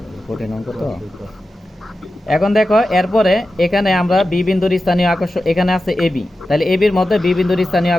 কঠিন অঙ্ক তো। এখন দেখো এরপরে এখানে আমরা বি বিন্দুর স্থানীয় আকর্ষণ, এখানে আছে এবি, তাহলে এবির মধ্যে বি বিন্দুর স্থানীয়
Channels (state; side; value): normal; both; correlation 0.92